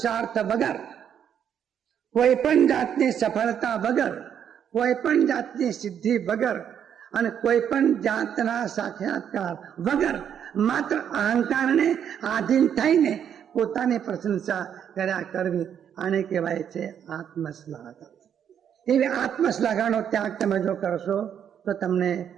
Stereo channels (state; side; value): quieter; left; 8.8 dB